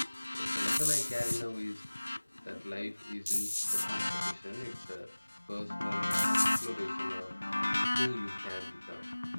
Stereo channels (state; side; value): inverted; both; correlation -1.00